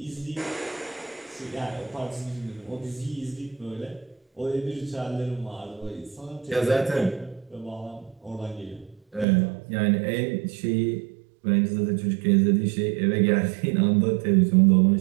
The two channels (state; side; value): drops out; left; at 9.2 s